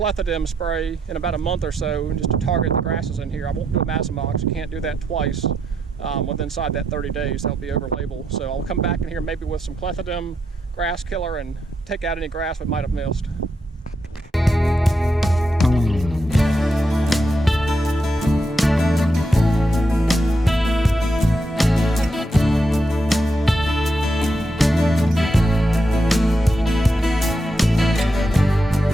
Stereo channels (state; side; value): normal; both; correlation 0.81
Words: spray in about a month or so just to target the grasses in here. I won't do Amazomox. You can't do that twice within inside that 30 days. That'll be over label. So I'll come back in here maybe with some clethodim grass killer and take out any grass we might have missed.